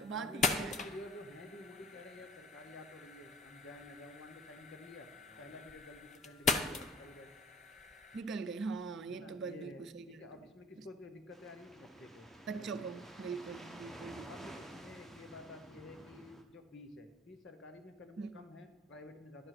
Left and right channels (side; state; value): both; normal; correlation 0.47